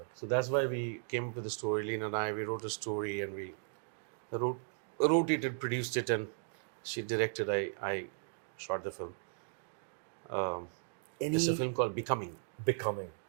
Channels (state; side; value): silent; left; digital silence